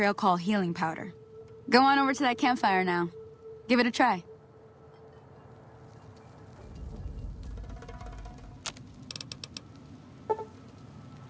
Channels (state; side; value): identical; both; correlation 1.00